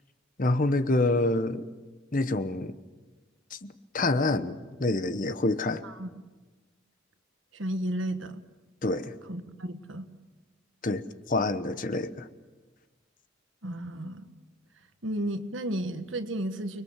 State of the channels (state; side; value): normal; both; correlation 0.48